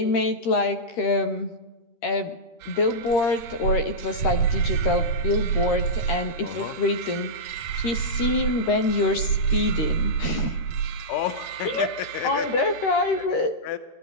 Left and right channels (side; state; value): right; late; 13 ms